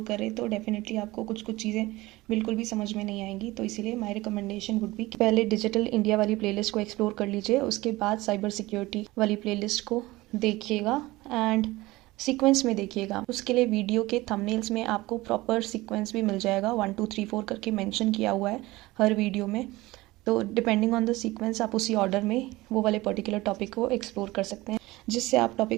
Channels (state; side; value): quieter; left; 19.6 dB